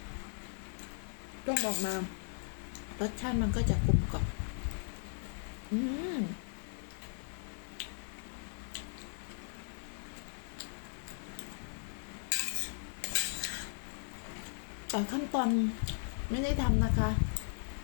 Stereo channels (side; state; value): right; silent; 53 dB below the other